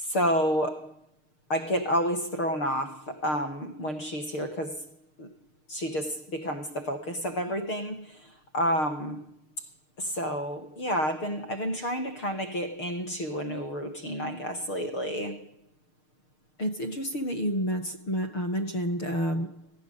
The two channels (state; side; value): late; right; 6.6 ms